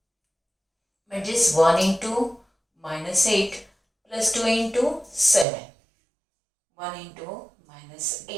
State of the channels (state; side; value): drops out; left; at 5.5 s